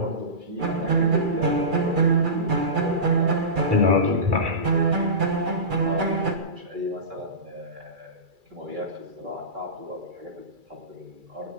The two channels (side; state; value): left; late; 2.3 ms